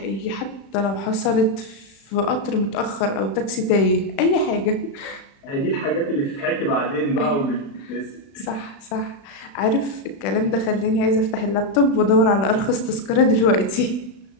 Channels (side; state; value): right; late; 36 ms